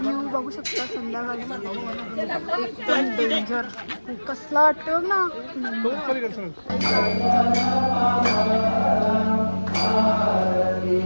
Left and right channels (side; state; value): both; inverted; correlation -1.00